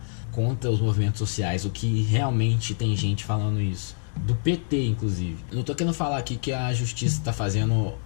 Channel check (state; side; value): silent; right; 61 dB below the other